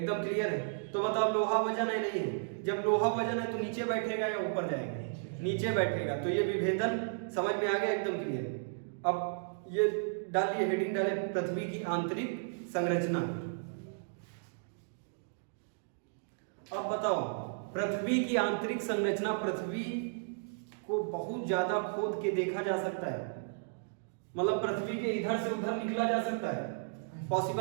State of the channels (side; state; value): left; silent; digital silence